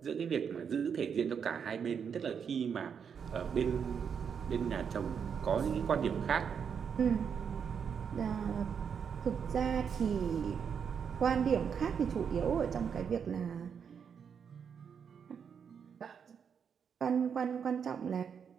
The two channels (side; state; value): left; quieter; 7.1 dB